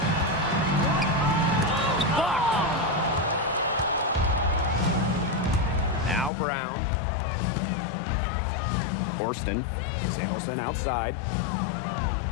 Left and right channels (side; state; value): right; drops out; at 6.3 s